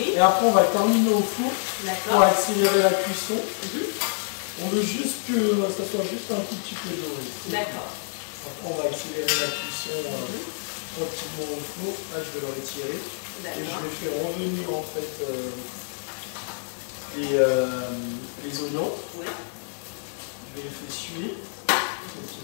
Et après, on va terminer au four pour D'accord. accélérer la cuisson. On veut juste que ça soit juste un tout petit peu doré. D'accord. Après, on va accélérer la cuisson tranquillement au four. Là, je vais le retirer. Et je vais faire revenir en fait les oignons. Oui. Je vais les faire suer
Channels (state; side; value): silent; right; 60 dB below the other